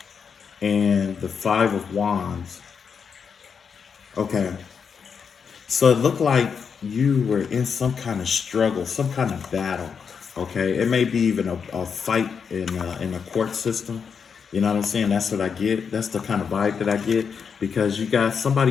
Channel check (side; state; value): right; quieter; 6.3 dB